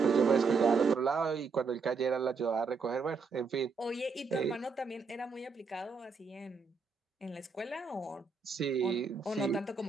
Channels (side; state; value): left; quieter; 4.9 dB